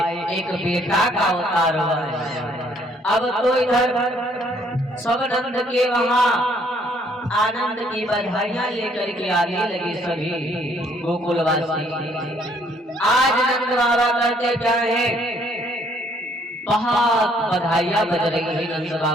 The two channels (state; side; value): normal; both; correlation 0.65